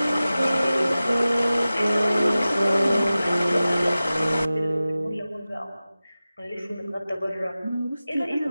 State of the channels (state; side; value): inverted; both; correlation -0.96